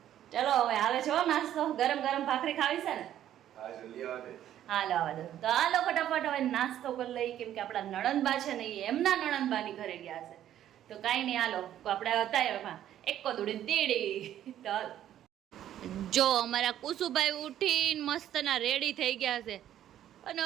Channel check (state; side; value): quieter; left; 11.5 dB